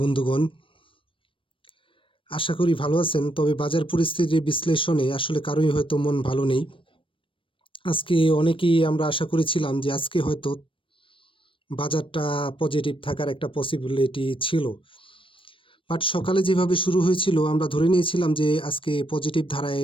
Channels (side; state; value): right; late; 0.25 ms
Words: বন্ধুগণ, আশা করি ভালো আছেন। তবে বাজার পরিস্থিতির বিশ্লেষণে আসলে কারোই হয়তো মন ভালো নেই। আজকে অনেকেই আমরা আশা করেছিলাম যে আজকে হয়তো বাজারটা পজিটিভ থাকার একটা পসিবিলিটি ছিল, বাট সকালে যেভাবে শুরু হয়েছিল আমরা ধরে নিয়েছিলাম যে আজকে পজিটিভ